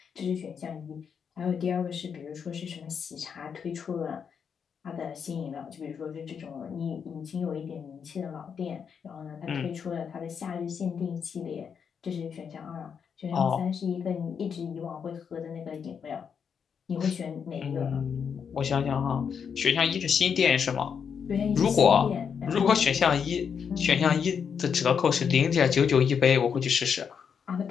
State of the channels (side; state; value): right; quieter; 6.9 dB